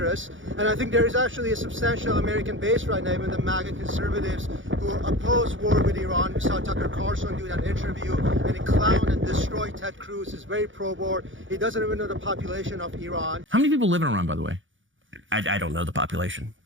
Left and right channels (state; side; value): late; left; 0.56 ms